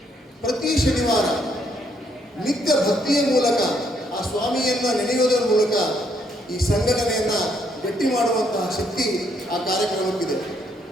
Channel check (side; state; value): both; normal; correlation 0.71